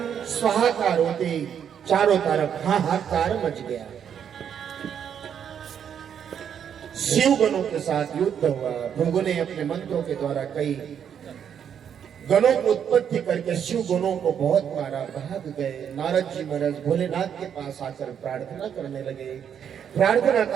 स्वाहाकार होती चारों तरफ हाहाकार मच गया। शिव गणों के साथ युद्ध हुआ। भृगु ने अपने मंत्रों के द्वारा कई गणों को उत्पत्ति करके शिव गणों को बहुत मारा, भाग गए। नारद जी महाराज भोलेनाथ के पास आकर प्रार्थना करने लगे। प्रार्थना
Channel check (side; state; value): left; quieter; 8.4 dB